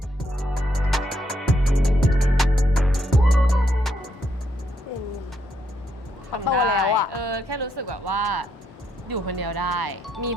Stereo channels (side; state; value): both; normal; correlation 0.76